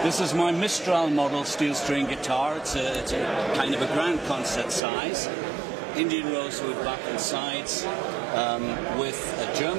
This is my Mistral model steel string guitar. It's a kind of a grand concert size. Indian rosewood back and sides, with a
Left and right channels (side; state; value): left; drops out; at 4.8 s